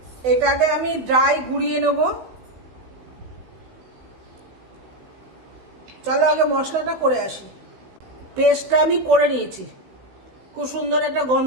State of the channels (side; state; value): left; late; 16 ms